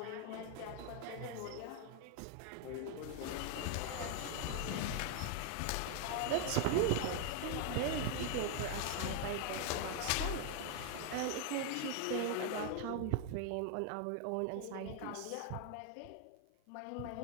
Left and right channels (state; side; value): different; both; correlation 0.00